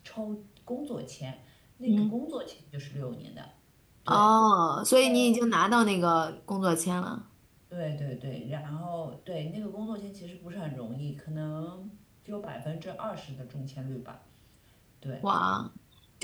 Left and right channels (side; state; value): both; identical; correlation 1.00